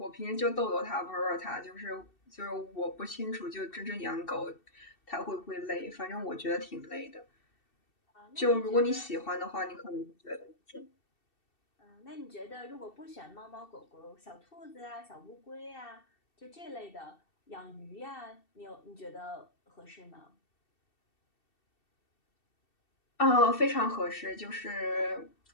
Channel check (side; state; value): right; late; 2.7 ms